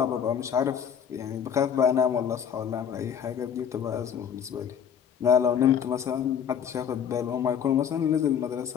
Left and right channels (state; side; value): quieter; right; 8.1 dB